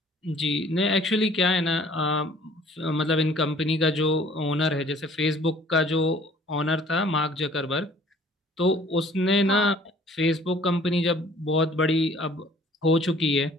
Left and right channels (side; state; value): both; normal; correlation 0.54